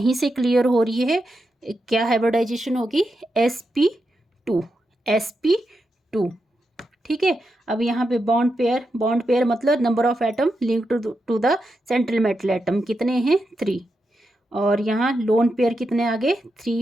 से क्लियर हो रही है। क्या हाइब्रिडाइजेशन होगी? sp2। ठीक है, अब यहाँ पे बॉन्ड पेयर मतलब number of atom link to the central metal atom कितने हैं? 3। और यहाँ लोन पेयर कितने आ गए?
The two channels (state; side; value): normal; both; correlation 0.86